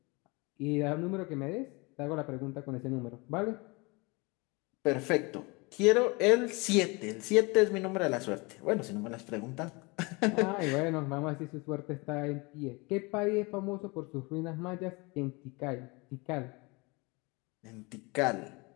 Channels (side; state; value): right; quieter; 26.9 dB